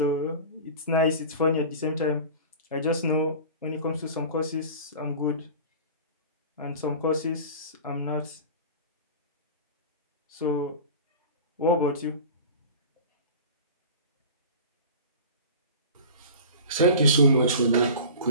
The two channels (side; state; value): both; inverted; correlation -0.36